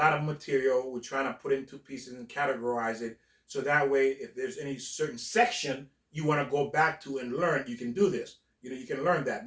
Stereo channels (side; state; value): both; identical; correlation 1.00